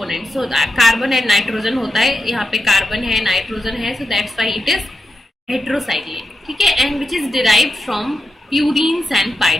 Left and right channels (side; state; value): both; normal; correlation 0.89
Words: so carbon and nitrogen होता है, यहाँ पे कार्बन है नाइट्रोजन है, so that's why it is heterocyclic, ठीक है। And which is derived from purines and